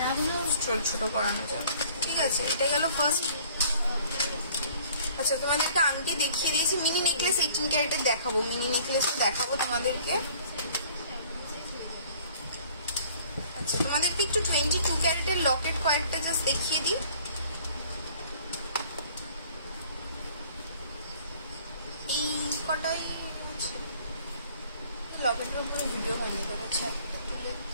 ছোট করানো যাবে, ঠিক আছে? এটা গেল ফার্স্ট। আচ্ছা, তোমাদেরকে আংটি দেখিয়ে দিয়েছি। মিনি নেকলেস 18 ক্যারেটের দেখাবো, মিনি নেকলেস দেখাবো তোমাদেরকে। আচ্ছা, তোমাদেরকে একটু 22 ক্যারেটের লকেট কয়েকটা জাস্ট দেখিয়ে দিই। এই কটাই লকেটের উপরে ভিডিও হয়নি, আচ্ছা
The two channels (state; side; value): inverted; both; correlation -0.55